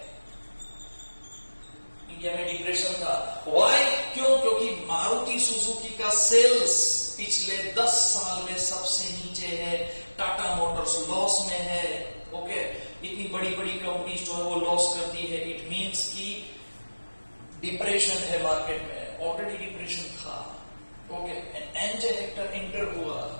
इंडिया में डिप्रेशन था। व्हाई? क्यों? क्योंकि मारुति सुजुकी का सेल्स पिछले 10 साल में सबसे नीचे है, टाटा मोटर्स लॉस में है, ओके, इतनी बड़ी बड़ी कंपनीज जो है वो लॉस करती है। इट मींस कि डिप्रेशन है मार्केट में, ऑलरेडी डिप्रेशन था, okay. And MJ Hector enter हुआ,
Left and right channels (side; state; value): both; inverted; correlation -1.00